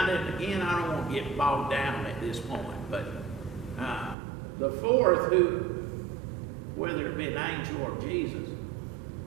of, again, I don't want to get bogged down at this point, but the fourth, who, whether it be an angel or Jesus,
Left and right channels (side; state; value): left; drops out; at 4.2 s